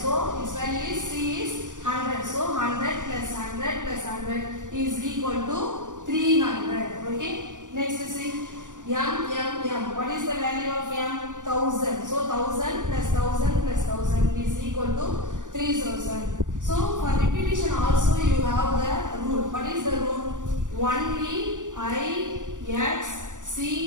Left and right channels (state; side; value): late; left; 0.87 ms